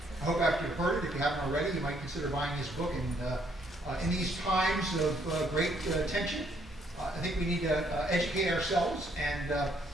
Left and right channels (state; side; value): normal; both; correlation 0.69